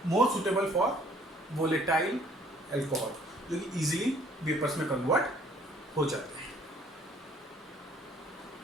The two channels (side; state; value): both; normal; correlation 0.59